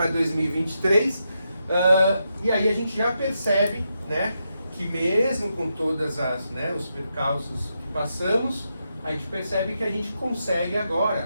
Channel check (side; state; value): both; inverted; correlation -0.84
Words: 2023. E aí a gente já percebe, né, que mesmo com todas os percalços que passamos, a gente percebe que a gente consegue